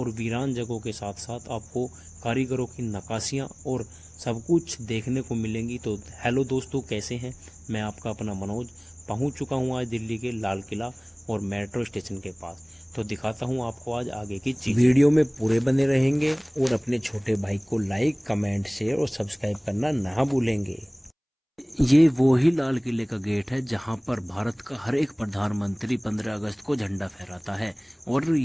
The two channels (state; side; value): identical; both; correlation 1.00